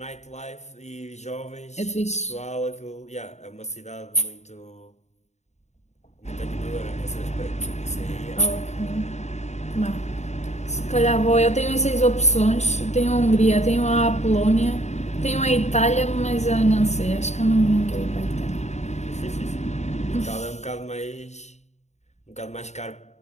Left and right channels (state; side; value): late; right; 0.33 ms